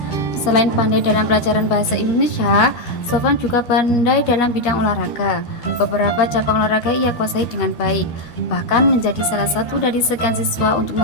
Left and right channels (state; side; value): late; right; 13 ms